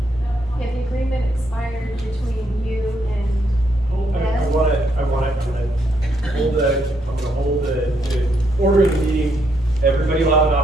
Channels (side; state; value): both; normal; correlation 0.75